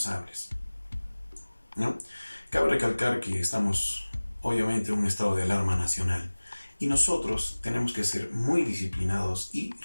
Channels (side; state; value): both; inverted; correlation -1.00